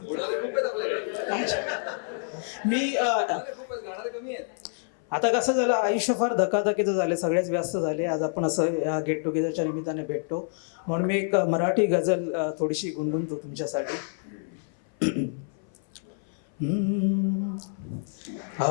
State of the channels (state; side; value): silent; right; 57 dB below the other